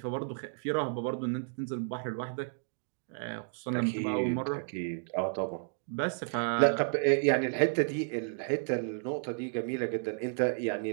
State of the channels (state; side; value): silent; left; digital silence